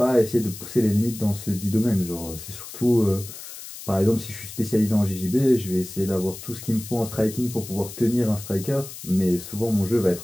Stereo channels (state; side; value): noise; left; hiss, 13 dB below the sound